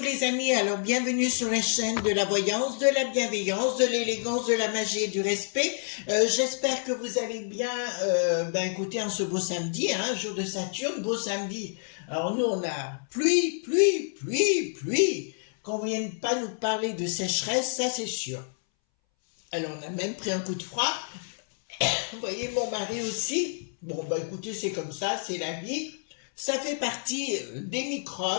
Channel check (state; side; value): silent; right; 59 dB below the other